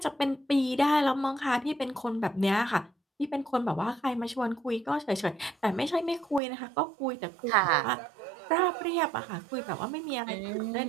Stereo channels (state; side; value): drops out; left; at 6.4 s